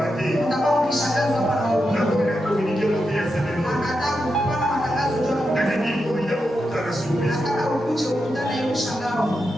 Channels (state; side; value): normal; both; correlation 0.87